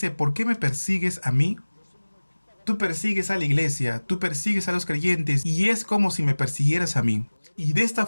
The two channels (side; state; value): both; inverted; correlation -1.00